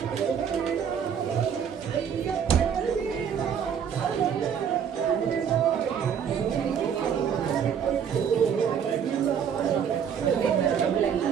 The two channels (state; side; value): quieter; left; 7.7 dB